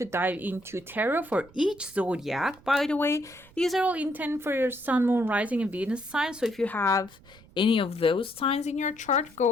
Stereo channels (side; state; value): right; noise; rumble, 25 dB below the sound